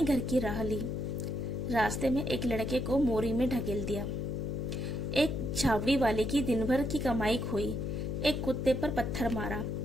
घर की राह ली। रास्ते में एक लड़के को मोरी में ढकेल दिया। एक छावड़ी वाले की दिन भर की कमाई खोई। एक कुत्ते पर पत्थर मारा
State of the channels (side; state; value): left; noise; hum, 2 dB below the sound